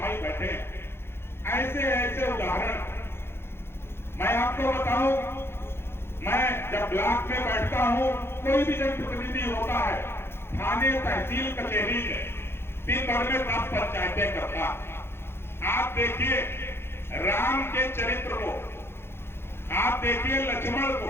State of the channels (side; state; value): right; late; 0.11 ms